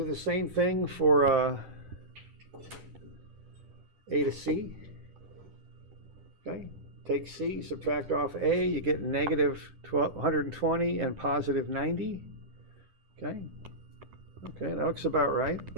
the same thing for A to C. Okay. Take C, subtract off A, you get negative 120 and positive 90. Okay. Okay, that looks about right.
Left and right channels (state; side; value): late; left; 10 ms